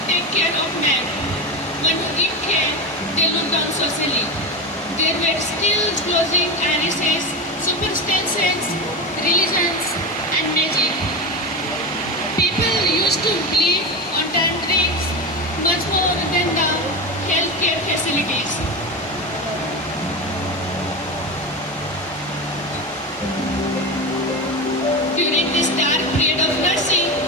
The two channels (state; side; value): normal; both; correlation 0.20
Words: take care of men. When who give care, they looked down socially. There were still clothing, irises, superstitions, religions, and magic. People used to live on drinks much more than the healthcare facilities. During this dark period of nursing,